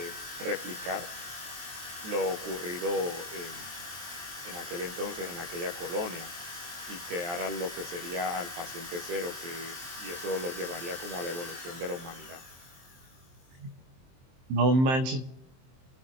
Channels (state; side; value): late; left; 23 ms